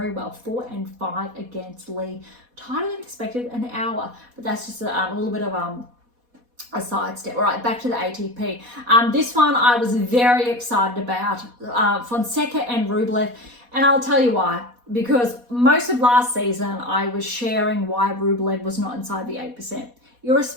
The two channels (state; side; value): late; left; 4.1 ms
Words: well, 4-5 against Lee. Tighter than expected, an hour, but that's just a little bit of a sidestep. All right, back to the ATP. This one I was very excited about, Fonseca and Rublev, and I'll tell you why. Because most of last season I was sharing why Rublev was not inside the 8%.